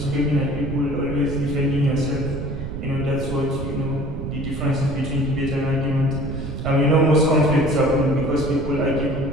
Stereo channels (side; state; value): right; noise; rumble, 7 dB below the sound